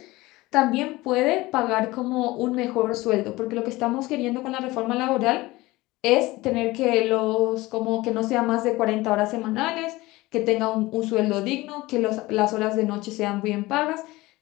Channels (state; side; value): quieter; right; 19.8 dB